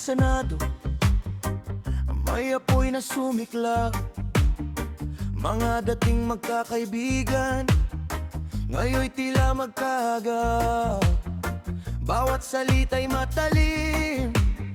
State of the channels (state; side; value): identical; both; correlation 1.00